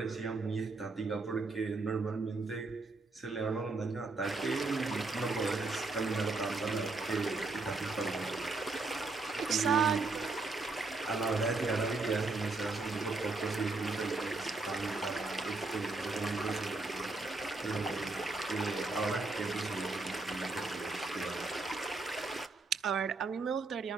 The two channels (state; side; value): quieter; left; 3.6 dB